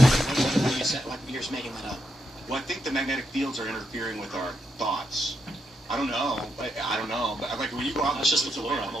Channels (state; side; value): normal; both; correlation 0.82